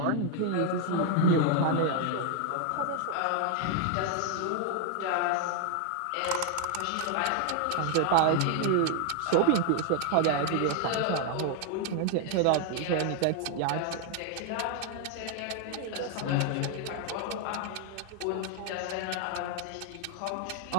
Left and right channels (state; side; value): different; both; correlation 0.00